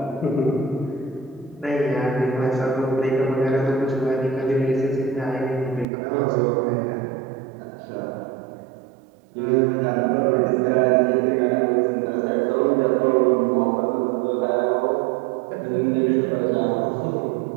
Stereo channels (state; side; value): drops out; left; at 5.9 s